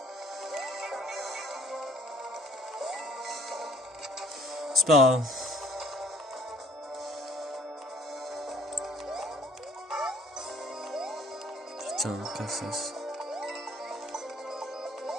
C'est pas grave. Putain, cassasse.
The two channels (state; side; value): normal; both; correlation 0.56